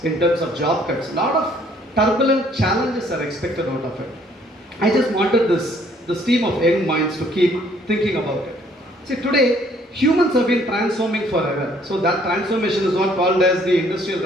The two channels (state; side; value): normal; both; correlation 0.62